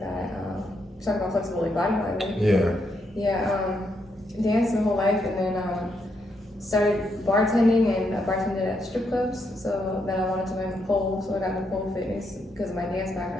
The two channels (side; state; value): both; normal; correlation 0.78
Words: that. Talking about flexible like body part, right? Yeah. Yeah. Danced my whole life, and then started bartending and I bartended at strip clubs. So then I wanted to learn the pole, so I got into pole fitness because of my dance